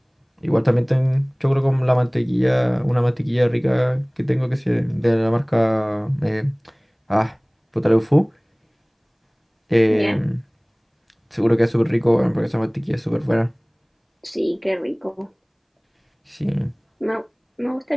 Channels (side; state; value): both; identical; correlation 1.00